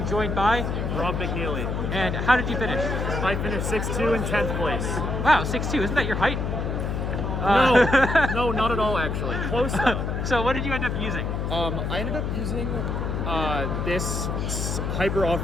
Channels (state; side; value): noise; left; hum, 2 dB below the sound